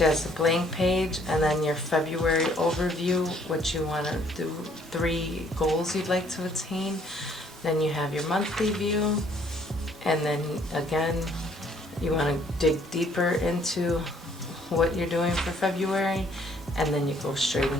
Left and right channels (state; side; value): normal; both; correlation 0.63